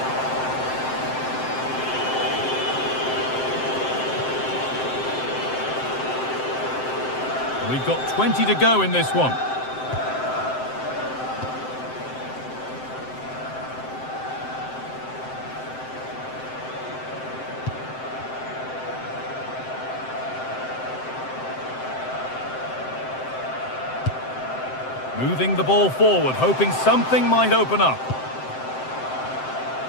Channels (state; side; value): late; right; 7.7 ms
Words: We've got 20 to go in this one. Moving the ball forward, hoping something might open up.